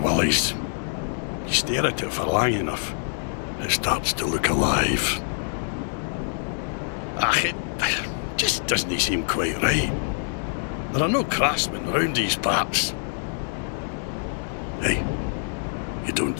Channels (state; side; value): silent; right; digital silence